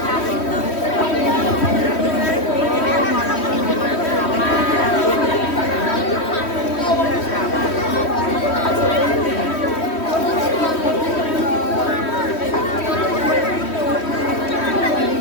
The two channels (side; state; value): right; late; 3.1 ms